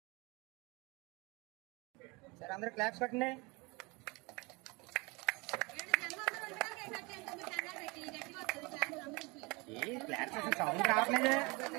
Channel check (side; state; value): left; quieter; 26.8 dB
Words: సరే అందరూ క్లాప్స్ కొట్టండి. ఏ క్లాప్స్ అసలు సౌండ్ రావట్లేదు.